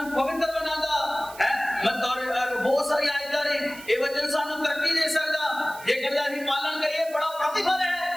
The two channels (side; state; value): right; noise; hiss, 18 dB below the sound